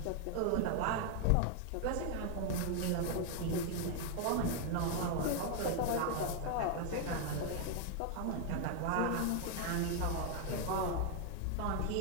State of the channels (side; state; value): both; different; correlation 0.00